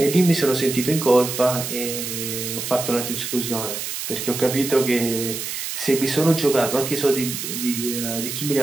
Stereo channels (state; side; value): noise; right; hiss, 5 dB below the sound